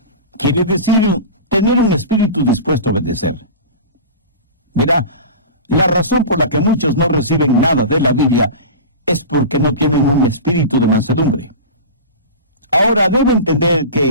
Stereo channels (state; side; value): inverted; both; correlation -0.31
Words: Quiere decir tener un espíritu dispuesto a obedecer. Verá, la razón por la que muchos no reciben nada de la Biblia es porque no tienen un espíritu de mansedumbre. Ahora debe entender